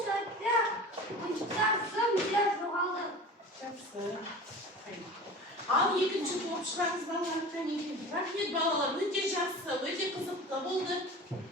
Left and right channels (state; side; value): normal; both; correlation 0.36